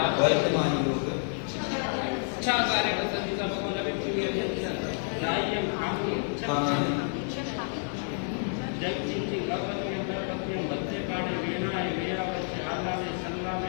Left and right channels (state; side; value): silent; right; 58 dB below the other